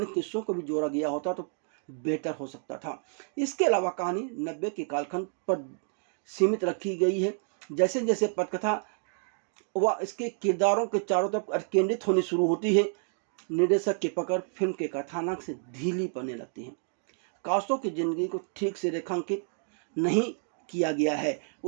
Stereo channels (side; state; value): left; silent; 58 dB below the other